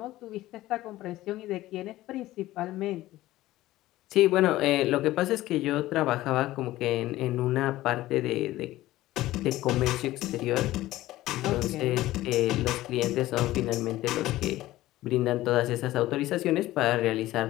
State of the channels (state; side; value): quieter; right; 16.2 dB